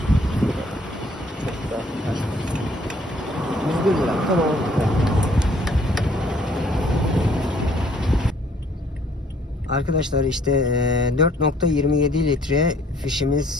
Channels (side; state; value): both; normal; correlation 0.61